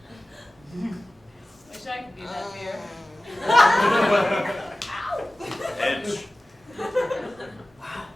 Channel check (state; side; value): normal; both; correlation 0.96